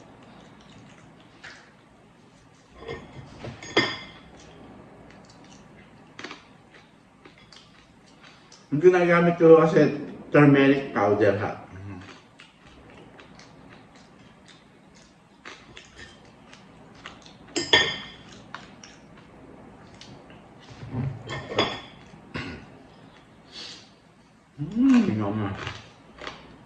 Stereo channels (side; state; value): both; identical; correlation 1.00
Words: Yung ginagamit ko kasi turmeric powder ha. Tingnan mo.